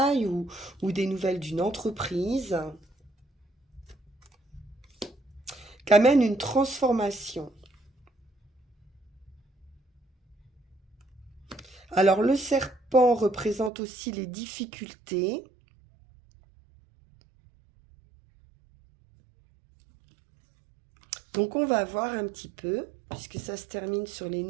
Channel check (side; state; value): left; drops out; at 13.7 s